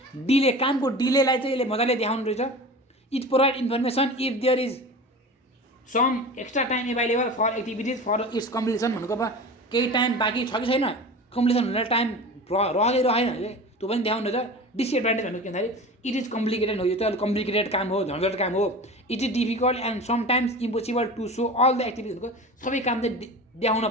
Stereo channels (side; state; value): both; normal; correlation 0.34